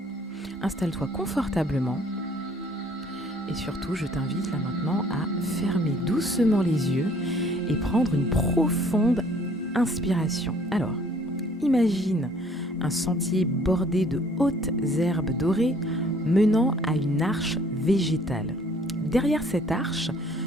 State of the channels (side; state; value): both; normal; correlation 0.59